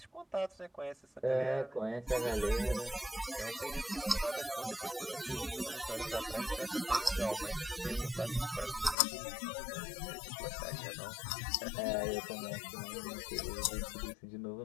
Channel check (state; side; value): drops out; right; at 9.0 s